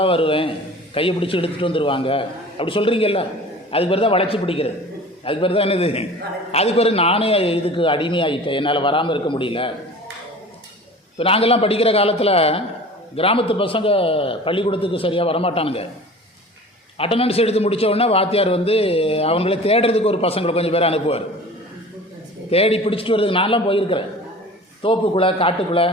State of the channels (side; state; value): both; normal; correlation 0.41